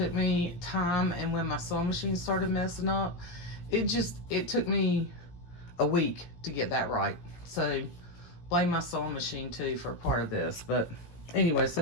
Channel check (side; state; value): right; late; 17 ms